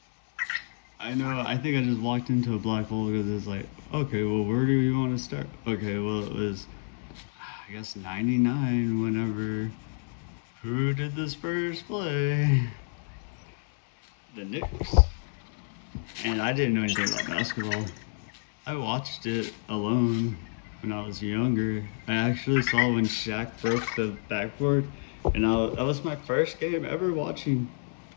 I know. I think I just walked into a black hole because it's like, okay, well, where do you want to start? Okay, well, it was, I guess, '99. Whenever, who did the Spurs play? The Knicks. And I didn't know anything about basketball. I watched it alone when I was younger. I actually saw when Shaq broke the backboard, and that was my first game ever watching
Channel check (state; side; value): silent; right; 59 dB below the other